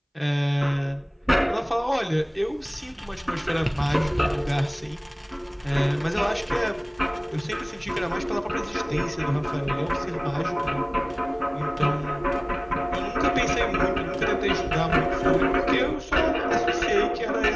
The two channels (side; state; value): both; identical; correlation 1.00